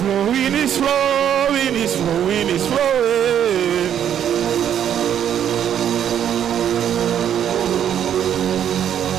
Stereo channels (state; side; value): quieter; left; 9.6 dB